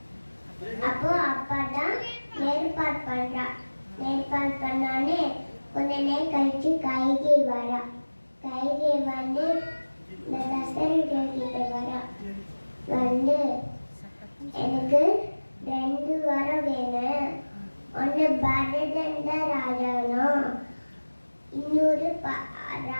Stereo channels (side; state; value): both; inverted; correlation -1.00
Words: அப்போ அப்பாதான் ஏற்பாடு பண்றா. ஏற்பாடு பண்ணானே கொஞ்ச நேரம் கழிச்சு கைகை வரா. கைகை வந்து இந்த தசரதர் கிட்ட வரா. வந்து எனக்கு 2 வரம் வேணும், பரதன் தான் ராஜானோ. இன்னொரு